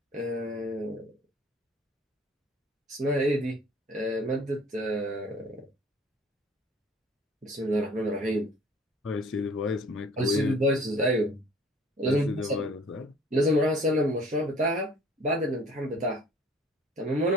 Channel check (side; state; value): both; normal; correlation 0.52